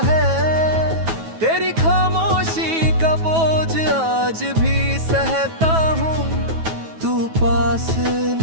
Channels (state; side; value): late; left; 9.2 ms